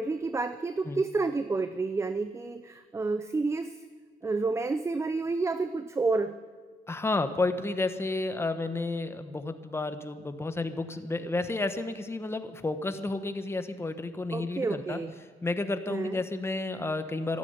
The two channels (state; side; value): normal; both; correlation 0.80